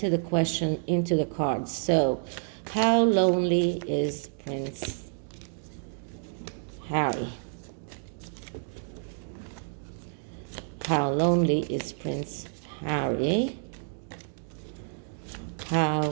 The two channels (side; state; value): left; silent; 57 dB below the other